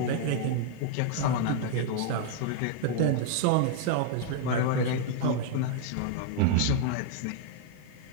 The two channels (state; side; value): different; both; correlation 0.00